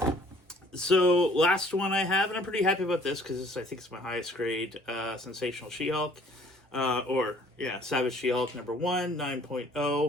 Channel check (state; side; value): normal; both; correlation 0.56